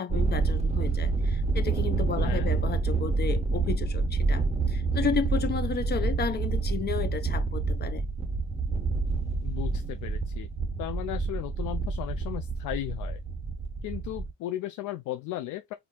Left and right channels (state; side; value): normal; both; correlation 0.65